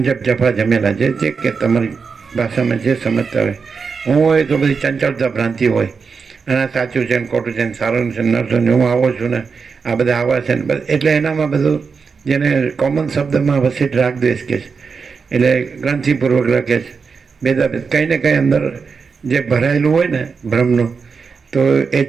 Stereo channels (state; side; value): quieter; left; 5.3 dB